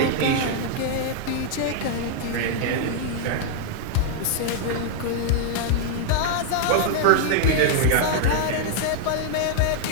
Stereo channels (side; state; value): both; different; correlation 0.00